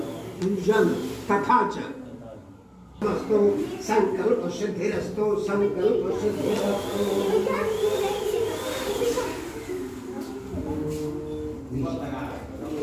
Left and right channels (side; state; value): both; identical; correlation 1.00